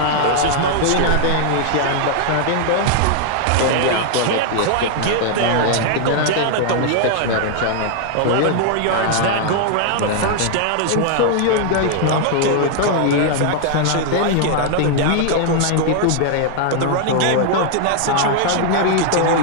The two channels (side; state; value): both; different; correlation 0.00